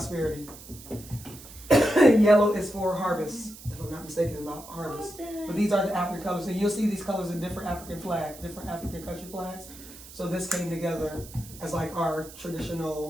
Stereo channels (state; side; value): noise; right; hiss, 17 dB below the sound